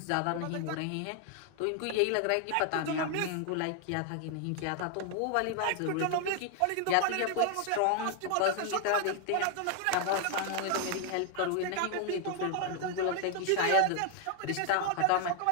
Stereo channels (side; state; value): both; different; correlation 0.00